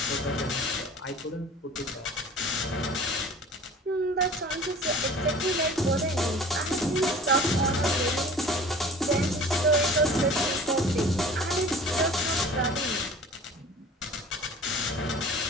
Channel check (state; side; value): normal; both; correlation 0.43